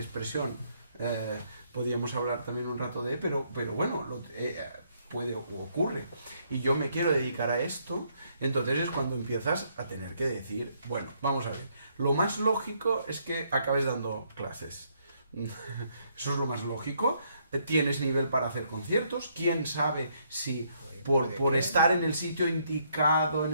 podríamos hablar también un rato de, pero bueno, puede o ocurre, y yo me quiero dedicar a esto, entonces es cuando empiezas a tener que decir, bueno, vamos a ver, lo más lógico es que acabes dando clases. Eso es lo más lógico. Tienes nivel para hacer conciertos. ¿Quién sabe si por estar en el sitio indicado, en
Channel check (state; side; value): inverted; both; correlation -0.71